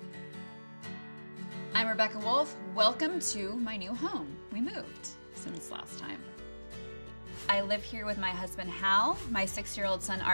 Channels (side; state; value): both; inverted; correlation -1.00